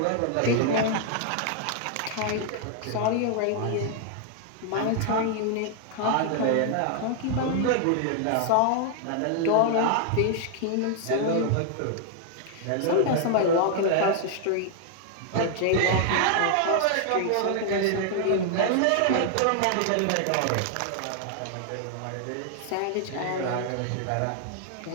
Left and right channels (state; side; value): different; both; correlation 0.00